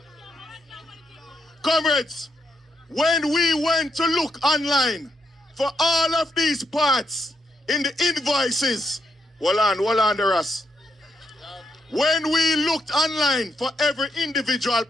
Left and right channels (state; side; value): normal; both; correlation 0.79